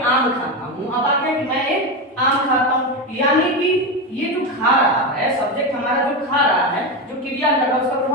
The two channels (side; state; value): both; normal; correlation 0.15